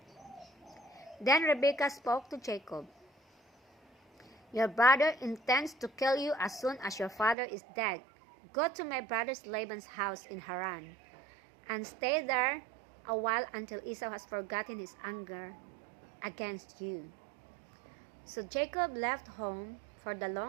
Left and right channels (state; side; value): drops out; left; at 7.4 s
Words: Then Rebekah spoke to Jacob. "Your brother intends to kill you as soon as your father is dead. Go to my brother Laban's house in Haran, and stay there a while until Esau has forgotten his anger against you." So Jacob left home for the